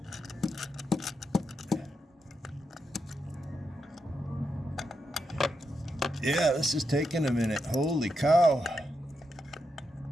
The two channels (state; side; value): normal; both; correlation 0.85